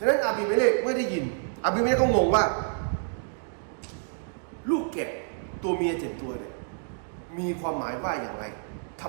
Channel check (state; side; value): silent; left; digital silence